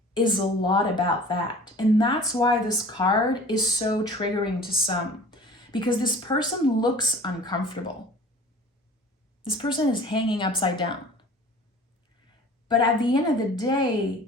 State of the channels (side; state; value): both; normal; correlation 0.44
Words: is a lot about that. And that's why this card is so triggering to some, because this person looks uncomfortable. This person is hanging upside down. But at the end of the